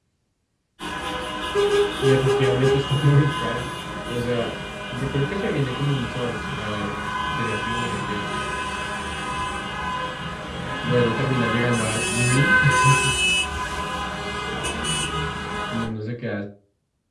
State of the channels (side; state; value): both; identical; correlation 1.00